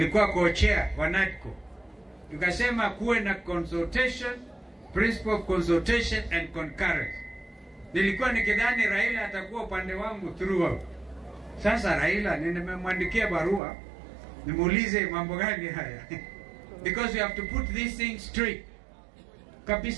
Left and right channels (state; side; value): drops out; left; at 13.6 s